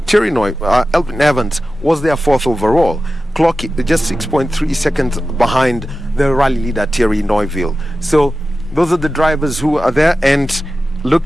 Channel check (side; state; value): both; normal; correlation 0.94